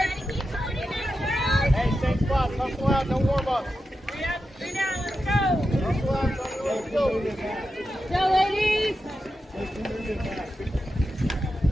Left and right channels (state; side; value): normal; both; correlation 0.90